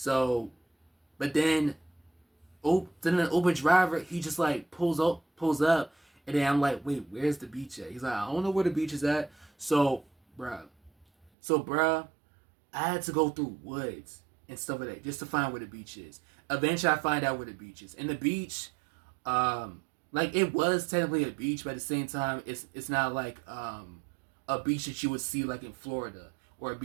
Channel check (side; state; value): left; drops out; at 11.3 s